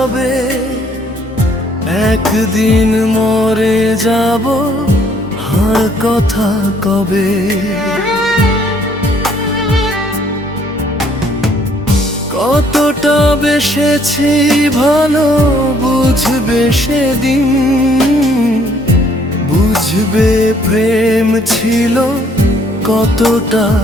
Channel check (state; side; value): normal; both; correlation 0.64